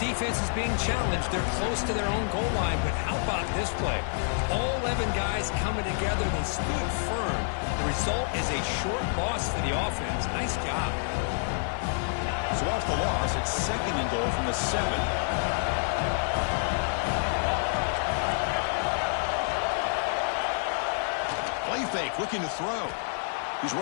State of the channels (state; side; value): silent; right; 59 dB below the other